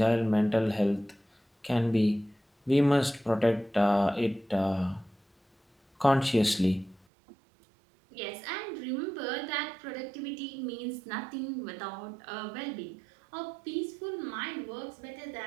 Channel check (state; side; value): drops out; left; at 7.1 s